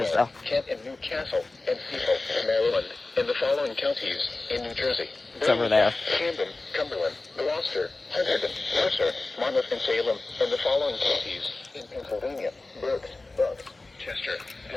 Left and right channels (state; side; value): quieter; right; 3.2 dB